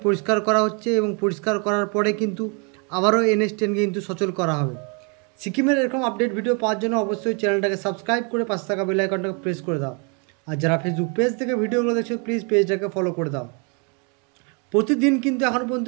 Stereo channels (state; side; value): quieter; left; 35.1 dB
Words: পরিষ্কার করা হচ্ছে এবং পরিষ্কার করার পরে কিন্তু আবারও NH 10-কে কিন্তু সচল করা হবে। সিকিমের এরকম আপডেট ভিডিও পাওয়ার জন্য অবশ্যই চ্যানেলটাকে সাবস্ক্রাইব করে পাশে থাকা বেল আইকনটাকে প্রেস করে দাও। আর যারা ফেসবুক পেজ থেকে ভিডিওগুলো দেখছো প্লিজ পেজটাকে ফলো করে দাও। প্রতিদিন কিন্তু এখন পর্যন্ত